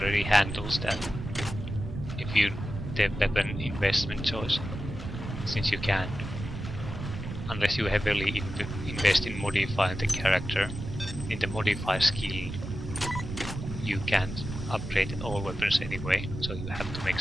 handles that. If you the weapon investment choice, since you can't, unless you heavily invest in modifying the character, in the modify skill, you can't upgrade all weapons anyway, so you have to make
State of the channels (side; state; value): right; noise; rumble, 7 dB below the sound